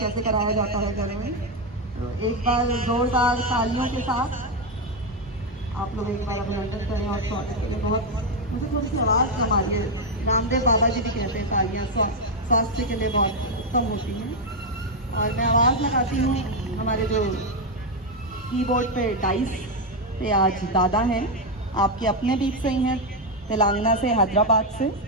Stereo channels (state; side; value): normal; both; correlation 0.04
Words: कराया जाता है घरों में। तो एक बार जोरदार तालियों के साथ आप लोग एक बार अभिनंदन करें और स्वागत करें। बहुत मुझे थोड़ी सी आवाज़ कम आ रही है। रामदेव बाबा जी भी कहते हैं तालियां स्वास्थ्य के लिए बहुत उत्तम होती हैं। और मैं आवाज़ लगाती हूँ। हमारे जो कीबोर्ड पे डाइस पे आज दादा हैं, आपके अपने बीच से ही हैं, तेलंगाना से, हैदराबाद से।